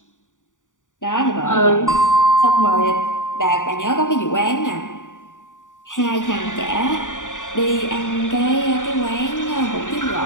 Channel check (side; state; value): right; late; 0.87 ms